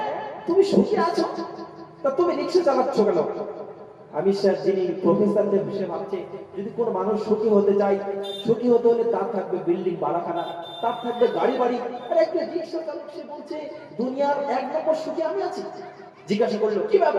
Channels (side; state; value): both; identical; correlation 1.00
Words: তুমি সুখী আছো, তা তুমি রিকশা চালাচ্ছ কেন? আমি স্যার যিনি প্রফেসরদের বিষয়ে ভাবছে যদি কোন মানুষ সুখী হতে চায়, সুখী হতে হলে তার থাকবে বিল্ডিং বাড়াখানা, তার থাকবে গাড়ি বাড়ি, আর একটা রিকশা চালক সে বলছে দুনিয়ার এক নম্বর সুখী আমি আছি। জিজ্ঞাসা করলো কি